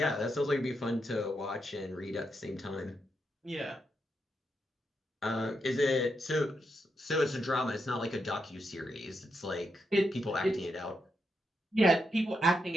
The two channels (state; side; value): normal; both; correlation 0.83